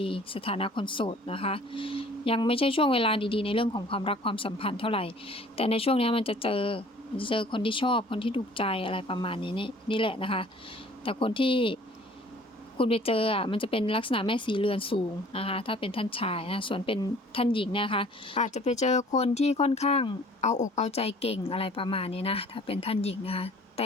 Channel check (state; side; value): normal; both; correlation 0.52